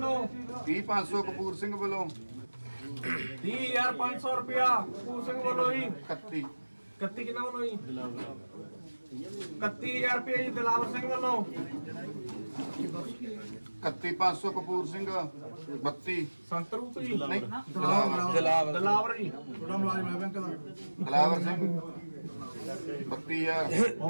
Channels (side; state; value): both; inverted; correlation -1.00